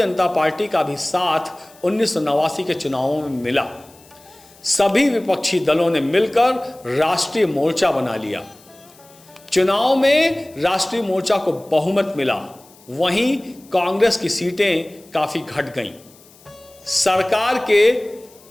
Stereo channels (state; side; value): noise; left; hiss, 26 dB below the sound